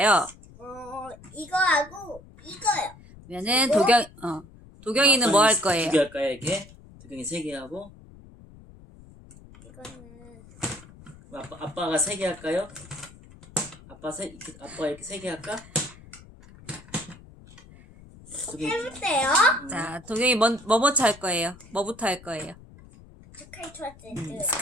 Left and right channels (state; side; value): noise; left; rumble, 21 dB below the sound